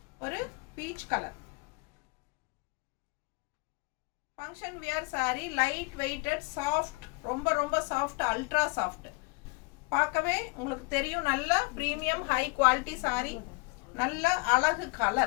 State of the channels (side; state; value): right; quieter; 29.5 dB